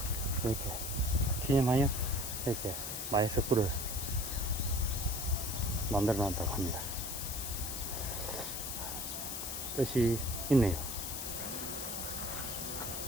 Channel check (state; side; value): noise; left; hiss, 4 dB below the sound